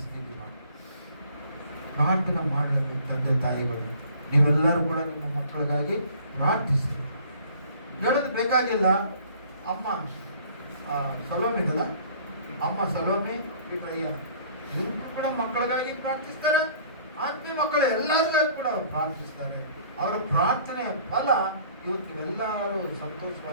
ಪ್ರಾರ್ಥನೆ ಮಾಡಬೇಕು. ತಂದೆ ತಾಯಿಗಳು ನೀವೆಲ್ಲರೂ ಕೂಡ ನಿಮ್ಮ ಮಕ್ಕಳಿಗಾಗಿ ಪ್ರಾರ್ಥಿಸಿ. ಹೇಳೋದು ಬೇಕಾಗಿಲ್ಲ. ಅಮ್ಮ ಸಲೋಮಿ ಇದಲ್ಲ, ಅಮ್ಮ ಸಲೋಮಿ ಬಿಟ್ರಯ್ಯ ಇವರು ಕೂಡ ಮಕ್ಕಳಿಗಾಗಿ ಪ್ರಾರ್ಥಿಸ್ತಾರೆ. ಆತ್ಮೀಯ ಮಕ್ಕಳು ಎಲ್ಲರಿಗಾಗಿ ಕೂಡ ಪ್ರಾರ್ಥಿಸ್ತಾರೆ. ಅವರ ಪ್ರಾರ್ಥನೆಯ ಫಲ ಇವತ್ತು ನೀವೆಲ್ಲರೂ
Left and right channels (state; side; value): inverted; both; correlation -0.53